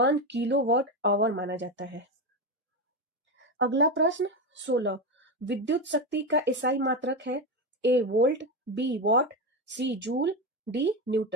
किलोवाट आवर माना जाता है। अगला प्रश्न 16, विद्युत शक्ति का एसआई मात्रक है A volt, B watt, C joule, D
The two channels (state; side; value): normal; both; correlation 0.14